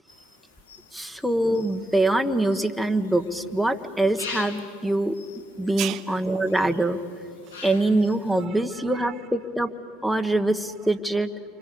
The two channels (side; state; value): both; normal; correlation 0.87